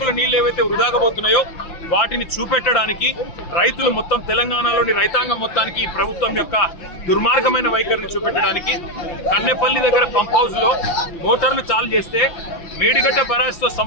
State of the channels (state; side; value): late; right; 5.9 ms